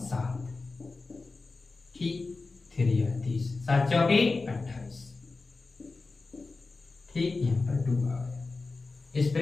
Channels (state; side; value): quieter; right; 3.8 dB